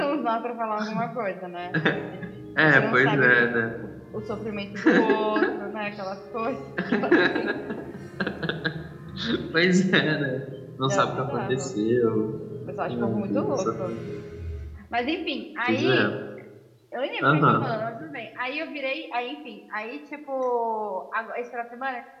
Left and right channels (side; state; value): both; identical; correlation 1.00